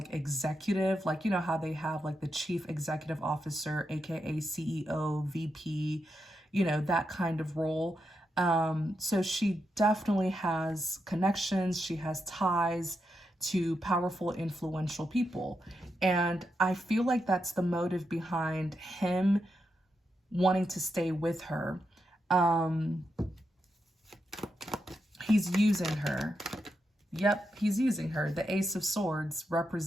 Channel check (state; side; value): normal; both; correlation 0.85